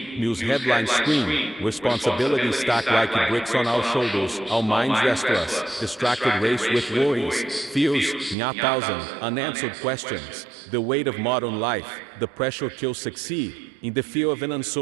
news headlines scream, responsibilities stack like bricks on our shoulders, our minds restless, distracted race with worries, fears, and 1,000 unanswered questions. The weight of modern life, the pressure to succeed, in the fear of an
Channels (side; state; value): left; drops out; at 8.3 s